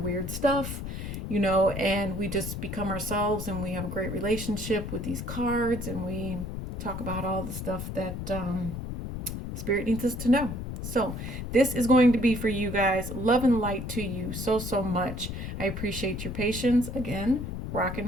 weird stuff, and we just become ourselves, and we have a great relationship with these cards, and we talk about all the stuff that Spirit needs us to know. So this is going to be for you guys. Love and light to you so much. I appreciate your patience. Again,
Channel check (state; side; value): noise; left; rumble, 6 dB below the sound